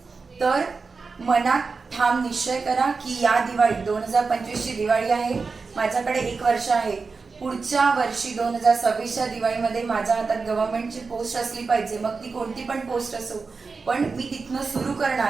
तर मनात ठाम निश्चय करा की या दिवाळी 2025 ची दिवाळी आहे. माझ्याकडे 1 वर्ष आहे. पुढच्या वर्षी 2026च्या दिवाळीमध्ये माझ्या हातात गव्हर्नमेंटची पोस्ट असली पाहिजे, मग ती कोणती पण पोस्ट असो, पण मी तिथनं सुरू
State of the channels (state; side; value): quieter; left; 4.5 dB